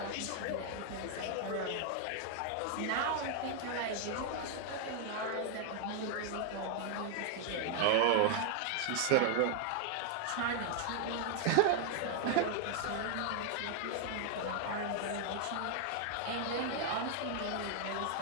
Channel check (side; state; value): both; different; correlation 0.00